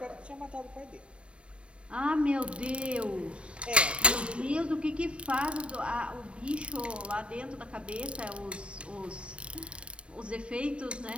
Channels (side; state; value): left; late; 0.057 ms